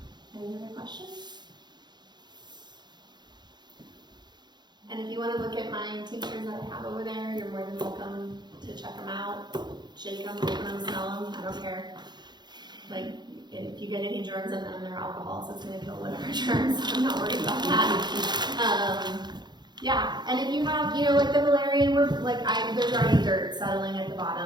Any other questions? And if you want to look at my tinctures that I have over there, you're more than welcome to check them out, shake them, open them, smell them, I don't care. Like, if you get any germs in them, they're alcohol, so it's going to kill whatever germs. I'm not worried about that. Yeah, and if you have, you know, like the Valerian, there's already dirt settling at the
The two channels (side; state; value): left; late; 0.21 ms